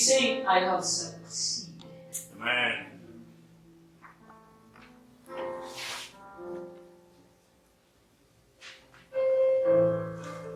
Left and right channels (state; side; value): identical; both; correlation 1.00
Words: saying, I have succeeded. Amen.